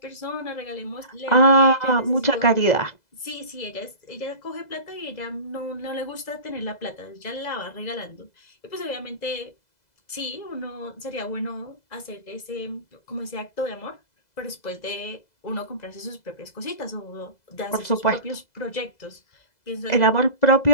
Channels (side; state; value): right; late; 2.0 ms